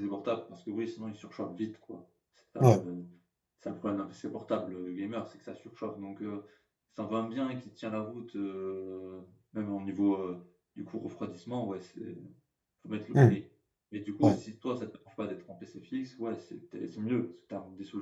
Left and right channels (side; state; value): both; identical; correlation 1.00